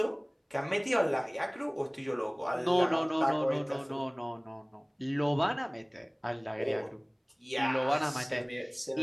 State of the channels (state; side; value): identical; both; correlation 1.00